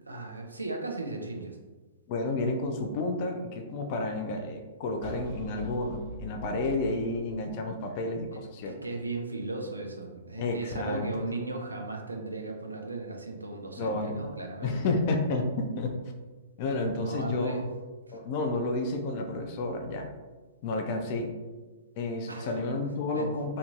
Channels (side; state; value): both; inverted; correlation -0.38